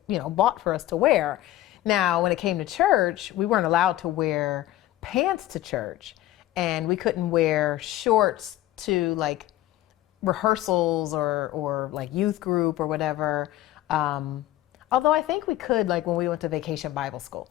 bought for us to wear. Now, when it came to church, we weren't allowed to wear pants to church, and we couldn't wear shorts to like rehearsals or like youth group or whatever. Although I think we could, like when we went to vacation Bible school,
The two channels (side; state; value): right; quieter; 14.6 dB